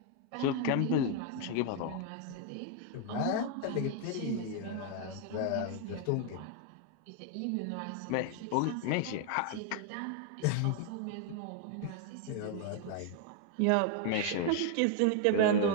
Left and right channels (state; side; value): different; both; correlation 0.00